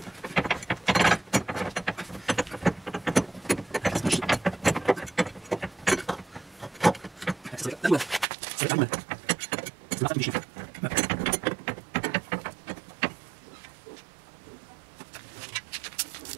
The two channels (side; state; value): left; drops out; at 8.2 s